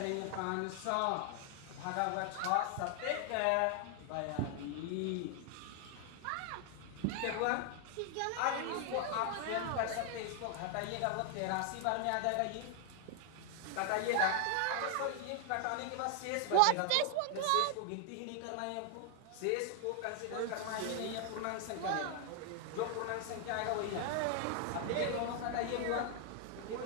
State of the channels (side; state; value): both; different; correlation 0.00